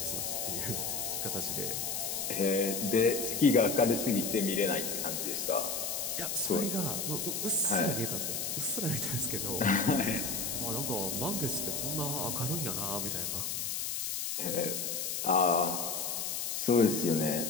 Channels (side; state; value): left; noise; hiss, 2 dB below the sound